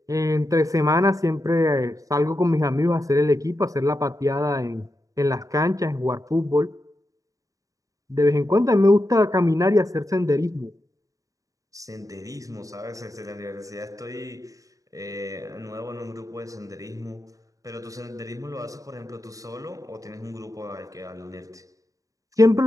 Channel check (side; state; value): left; late; 0.16 ms